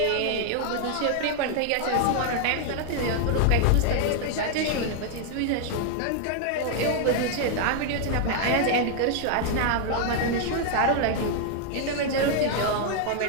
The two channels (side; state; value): both; different; correlation 0.00